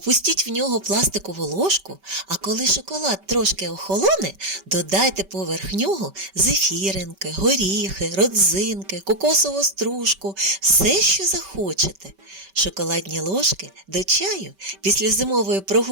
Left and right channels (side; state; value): left; late; 5.2 ms